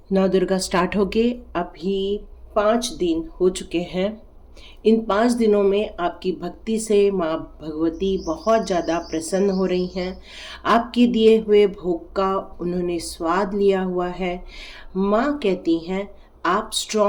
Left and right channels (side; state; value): both; identical; correlation 1.00